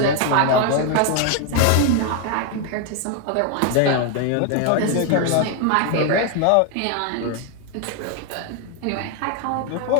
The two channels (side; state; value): both; different; correlation 0.01